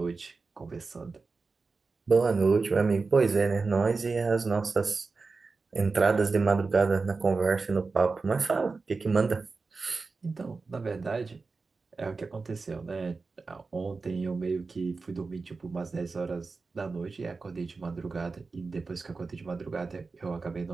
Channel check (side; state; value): left; quieter; 4.2 dB